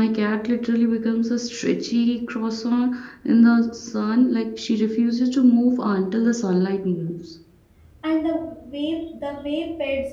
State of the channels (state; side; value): identical; both; correlation 1.00